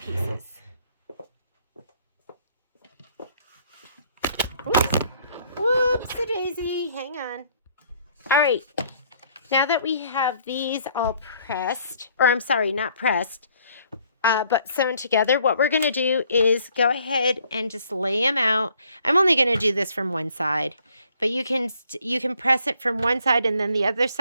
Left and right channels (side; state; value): both; inverted; correlation -0.63